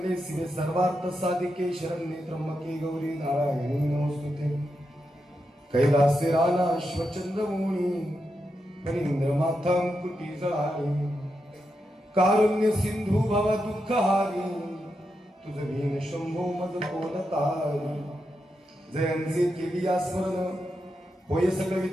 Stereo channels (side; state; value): both; normal; correlation 0.86